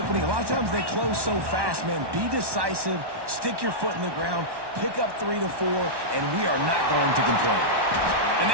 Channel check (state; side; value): late; left; 1.1 ms